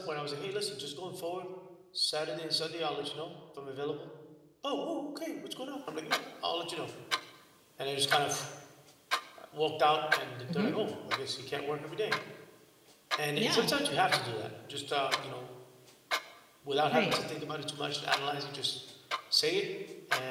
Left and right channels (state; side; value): identical; both; correlation 1.00